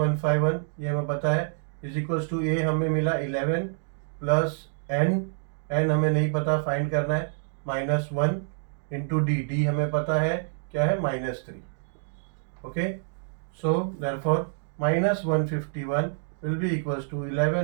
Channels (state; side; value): silent; left; digital silence